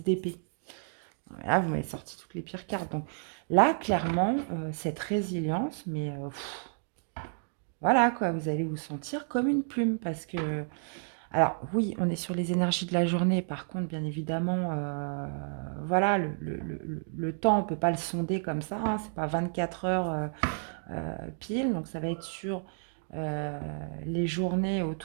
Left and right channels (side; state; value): left; silent; digital silence